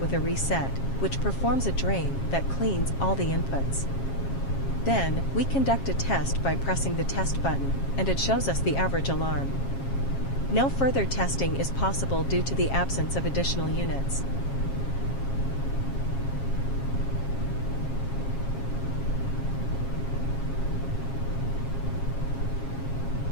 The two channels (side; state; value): right; late; 7.4 ms